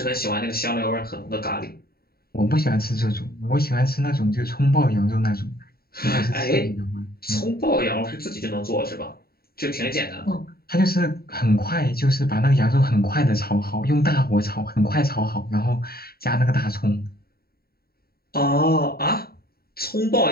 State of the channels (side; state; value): right; late; 0.45 ms